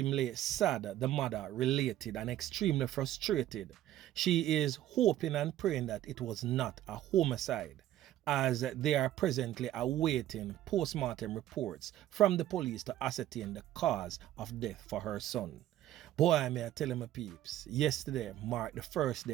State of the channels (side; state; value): left; quieter; 13.1 dB